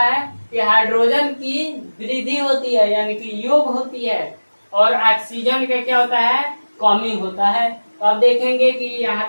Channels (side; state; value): both; inverted; correlation -1.00